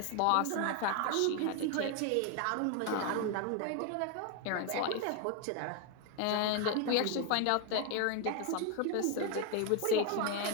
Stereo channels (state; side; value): different; both; correlation 0.01